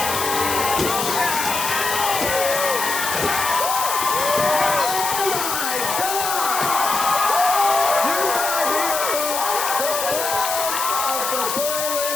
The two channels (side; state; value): left; noise; hiss, 3 dB below the sound